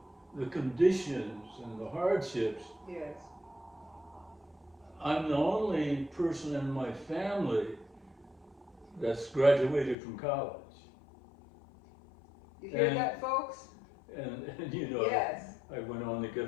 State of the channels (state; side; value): drops out; right; at 10.0 s